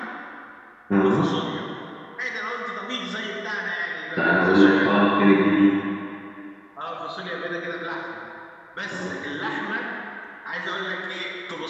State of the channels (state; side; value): identical; both; correlation 1.00